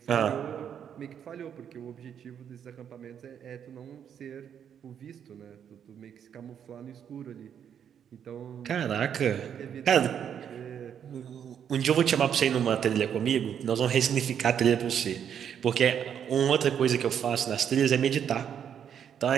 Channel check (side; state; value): left; quieter; 8.6 dB